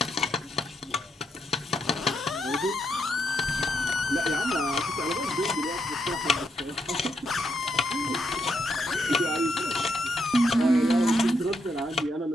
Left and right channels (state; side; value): normal; both; correlation 0.80